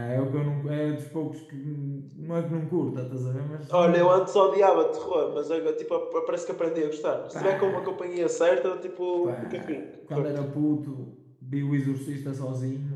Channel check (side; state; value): both; identical; correlation 1.00